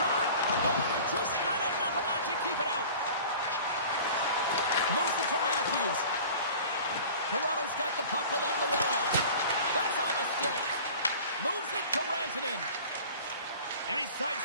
Oh, just not enough of that to keep it out. Moves it to Matthews. Toronto's got the puck along the wall. That's on the stick. Moves it to Rantanen. And he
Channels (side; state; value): both; inverted; correlation -0.42